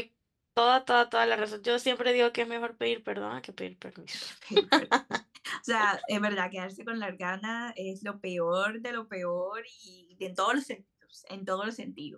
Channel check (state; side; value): identical; both; correlation 1.00